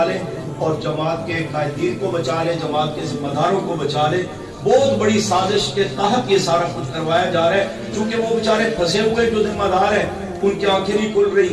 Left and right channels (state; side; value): identical; both; correlation 1.00